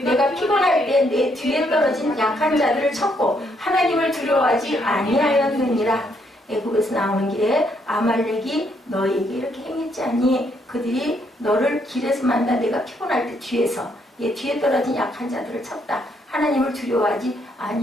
피곤할 때 내 뒤에 떨어진 약한 자들을 쳤고 하나님을 두려워하지 아니하였느니라. 애굽에서 나오는 길에 아말렉이 너희에게 이렇게 행했지 않니? 그들이 너를 길에서 만나 내가 피곤할 때 뒤에 떨어진 약한 자들을 쳤다. 하나님을 두려워하지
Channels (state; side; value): normal; both; correlation 0.73